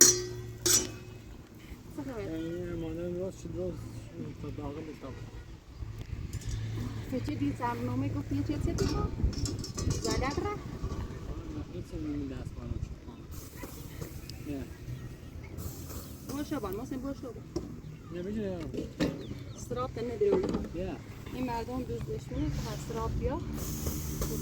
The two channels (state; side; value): identical; both; correlation 1.00